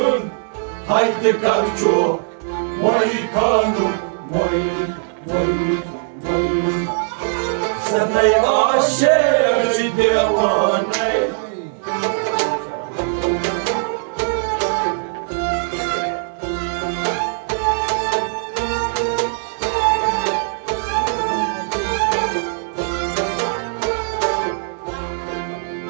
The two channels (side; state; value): left; silent; 64 dB below the other